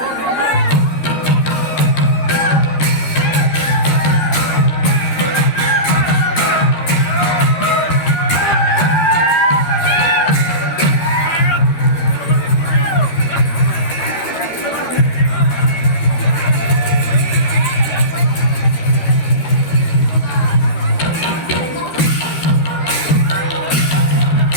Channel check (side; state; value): right; late; 13 ms